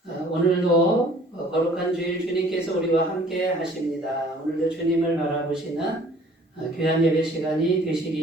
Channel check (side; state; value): both; normal; correlation 0.54